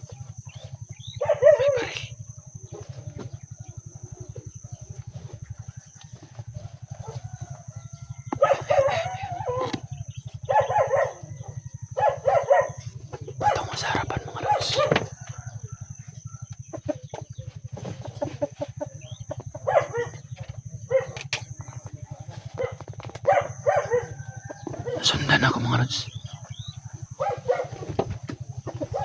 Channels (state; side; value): identical; both; correlation 1.00